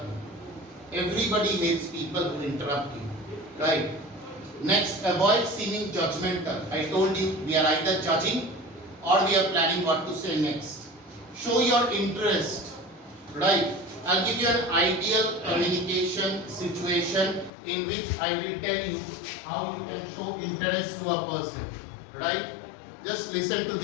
me. Everybody hates people who interrupt you, right? Next, avoid seeming judgmental. I told you, we are either judging or we are planning what to say next. Show your interest, right? I'll give you an ideal communication situation in which I will tell you how you can show interest to a person, right? Just listen to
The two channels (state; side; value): drops out; right; at 17.5 s